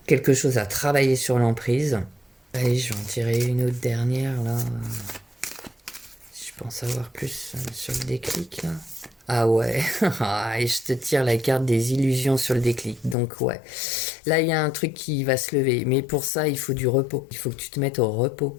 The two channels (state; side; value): drops out; right; at 13.2 s